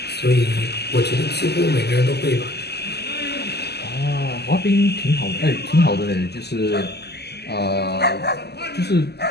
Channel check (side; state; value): right; late; 0.48 ms